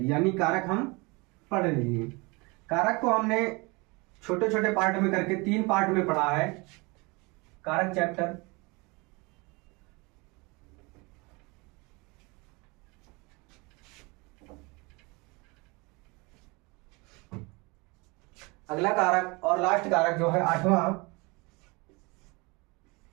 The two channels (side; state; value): left; quieter; 26.8 dB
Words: यानी कारक हम पढ़ लेंगे। कारक को हमने छोटे छोटे पार्ट में करके 3 पार्ट में पढ़ा है। कारक चैप्टर, अगला कारक और लास्ट कारक जो है 8वां,